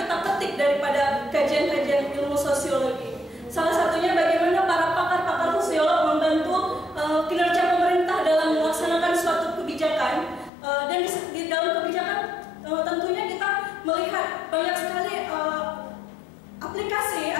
kita petik daripada kajian-kajian ilmu sosiologi. Salah satunya bagaimana para pakar-pakar sosiolog membantu kinerja pemerintah dalam melaksanakan suatu kebijakan, dan di dalam kebijakan tentunya kita melihat banyak sekali aplikasi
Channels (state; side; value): drops out; right; at 10.5 s